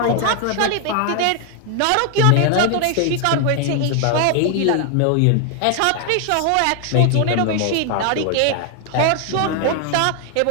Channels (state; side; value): different; both; correlation 0.00